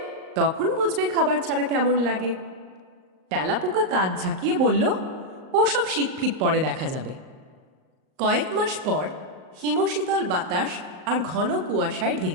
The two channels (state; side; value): late; left; 38 ms